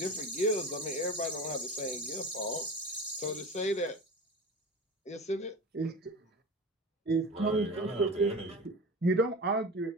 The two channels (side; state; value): both; normal; correlation 0.31